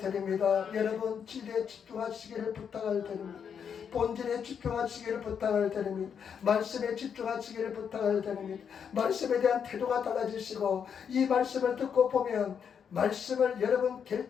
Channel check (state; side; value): quieter; right; 7.4 dB